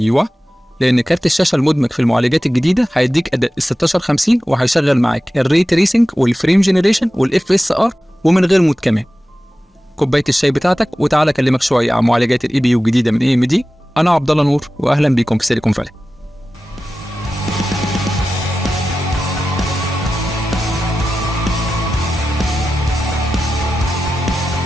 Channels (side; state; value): both; normal; correlation 0.94